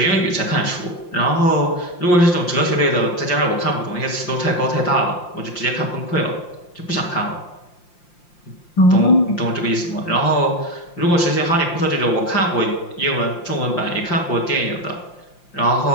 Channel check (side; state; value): right; late; 5.7 ms